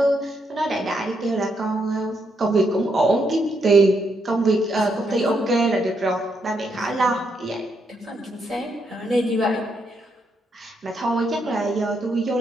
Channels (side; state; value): both; normal; correlation 0.78